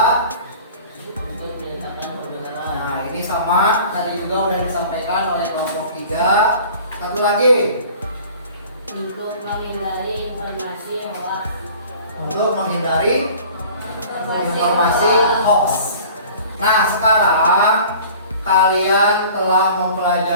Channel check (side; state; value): both; inverted; correlation -0.45